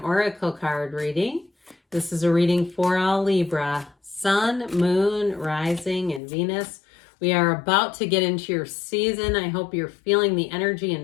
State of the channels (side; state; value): right; drops out; at 6.2 s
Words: card reading. This is a reading for all Libra, Sun, Moon, Rising, and Venus. We are about to get into your season. I hope you're feeling the energy